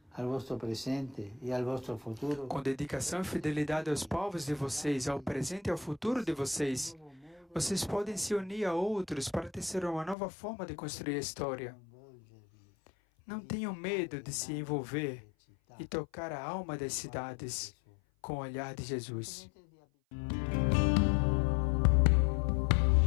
Com dedicação e fidelidade aos povos de vocês, ao presente e ao futuro de vocês, vocês podem se unir a outros para tecer uma nova forma de construir a história. Não tenham medo de se envolver e tocar a alma das cidades com o olhar de Jesus.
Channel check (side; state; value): right; drops out; at 10.2 s